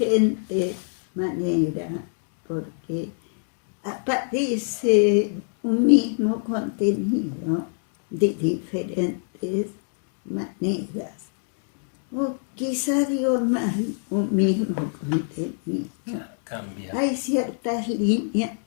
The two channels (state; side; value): silent; right; digital silence